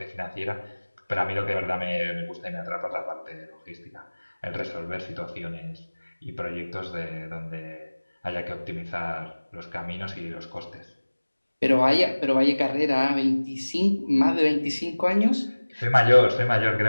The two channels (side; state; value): both; inverted; correlation -1.00